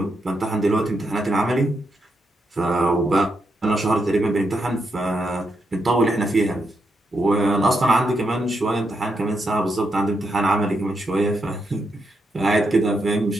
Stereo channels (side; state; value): both; normal; correlation 0.82